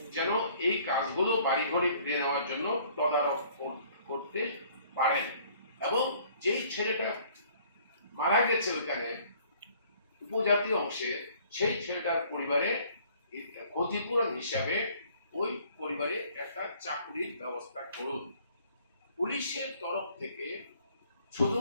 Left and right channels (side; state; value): both; inverted; correlation -0.58